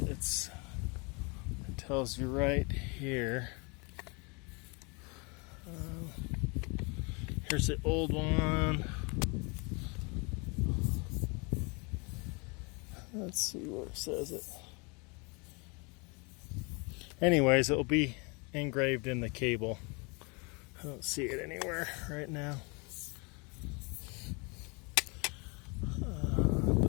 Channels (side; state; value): right; quieter; 30.8 dB